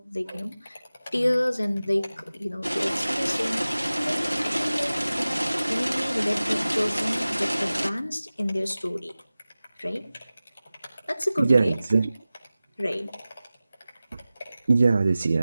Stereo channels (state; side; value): inverted; both; correlation -0.97